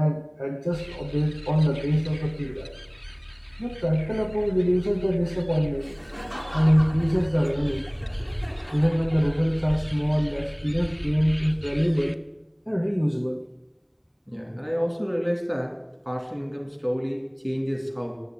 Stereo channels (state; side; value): identical; both; correlation 1.00